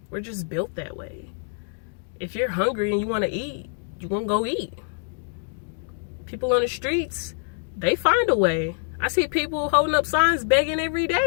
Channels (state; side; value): silent; right; 62 dB below the other